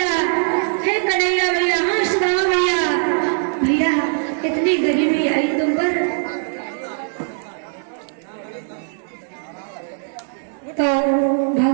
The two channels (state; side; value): silent; left; digital silence